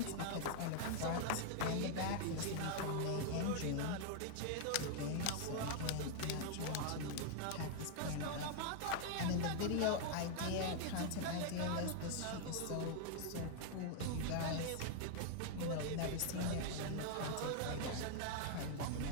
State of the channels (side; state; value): both; different; correlation 0.00